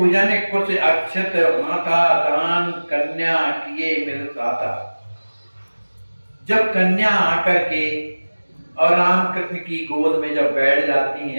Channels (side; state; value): both; inverted; correlation -1.00